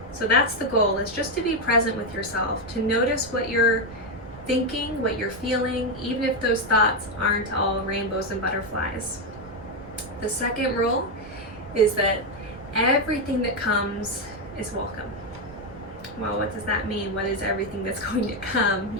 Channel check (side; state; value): right; noise; rumble, 19 dB below the sound